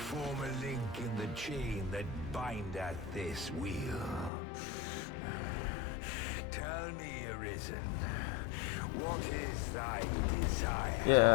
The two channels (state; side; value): drops out; right; at 4.3 s